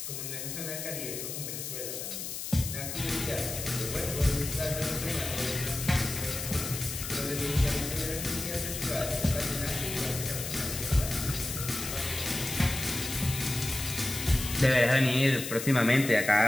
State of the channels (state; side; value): noise; left; hiss, 6 dB below the sound